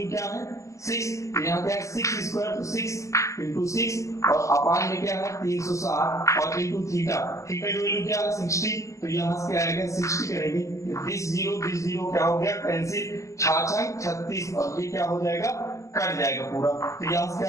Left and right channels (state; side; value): late; right; 0.15 ms